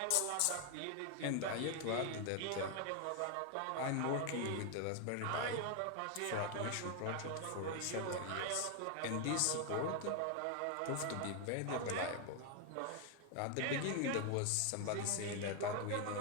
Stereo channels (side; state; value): both; different; correlation 0.01